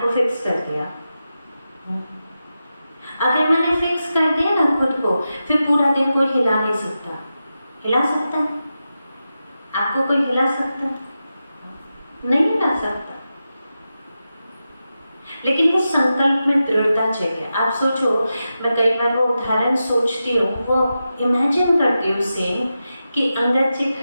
को फिक्स कर दिया। अगर मैंने फिक्स कर दिया ना खुद को, फिर पूरा दिन कोई हिला नहीं सकता। हिला सकता है? आपको कोई हिला सकता? नहीं हिला सकता। लेकिन वो संकल्प में दृढ़ता चाहिए। आप सोचो, मैं कई बार वो उदाहरण सोचती हूँ, वो इमेजिन करती हूँ सेम, कि अंगद जी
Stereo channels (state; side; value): inverted; both; correlation -0.91